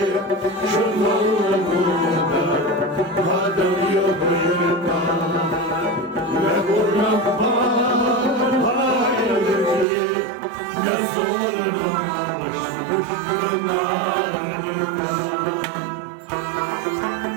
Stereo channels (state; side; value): drops out; left; at 9.9 s